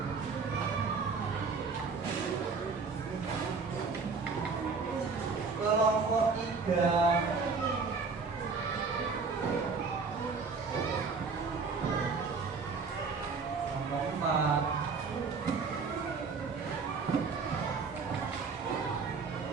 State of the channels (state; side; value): quieter; left; 4.8 dB